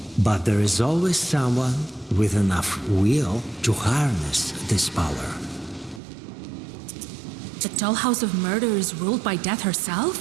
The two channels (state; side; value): drops out; left; at 6.0 s